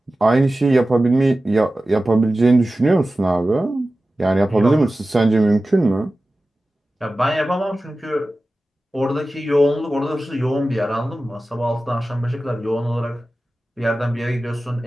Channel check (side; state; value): both; normal; correlation 0.95